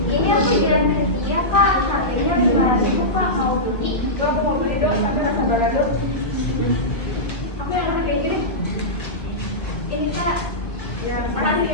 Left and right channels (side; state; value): right; late; 1.2 ms